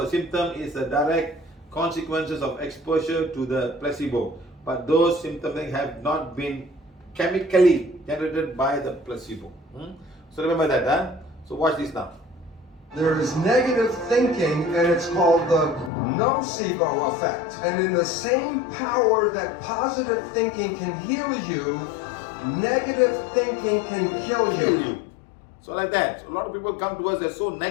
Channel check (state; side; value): drops out; right; at 15.9 s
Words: a symptom is a direct consequences of exposure to the placebo. But those symptoms have not been chemically generated by the placebo. So remember that. So watch this now. There is negative thinking, and it's called the nocebo effect. And in the same power that positive thinking can heal you, negative thinking can kill you. So like that. So a lot of people come to us, they're so